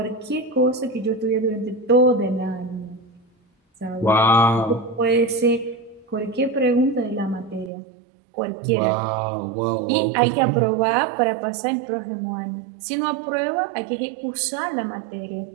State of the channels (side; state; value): left; drops out; at 7.7 s